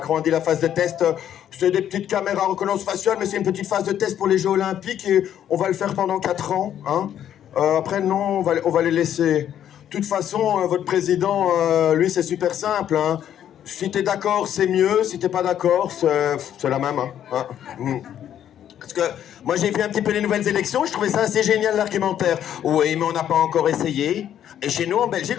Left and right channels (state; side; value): quieter; right; 10.3 dB